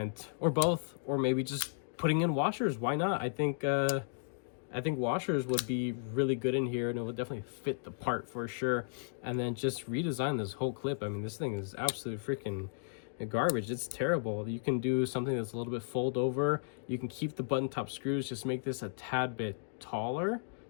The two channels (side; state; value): right; silent; digital silence